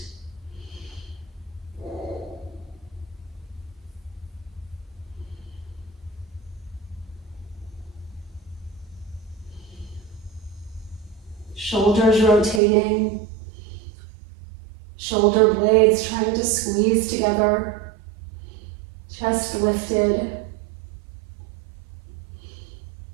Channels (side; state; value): left; drops out; at 12.6 s